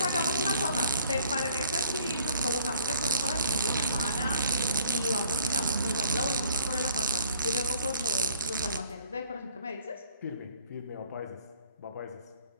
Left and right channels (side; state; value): both; inverted; correlation -0.58